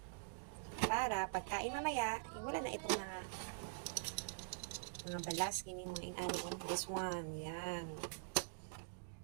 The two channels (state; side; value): silent; left; digital silence